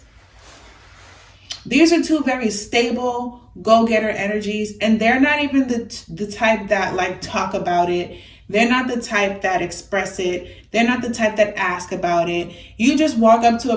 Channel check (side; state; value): both; identical; correlation 1.00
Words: these are 2 very stable, go-getter energies, and they're not even the type that like talk about it. They're not the type that express it. They're not the type that ask about it. You just walk up to a